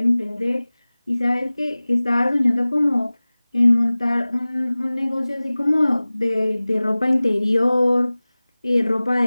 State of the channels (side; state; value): both; inverted; correlation -0.99